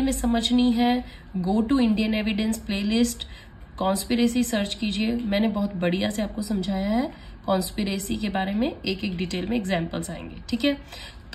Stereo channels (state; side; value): identical; both; correlation 1.00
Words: में समझनी है go to Indian evidence playlist, conspiracy search कीजिए। मैंने बहुत बढ़िया से आपको समझाया है कॉन्स्पिरेसी के बारे में, एक एक डिटेल में एग्जांपल्स आएंगे, ठीक है।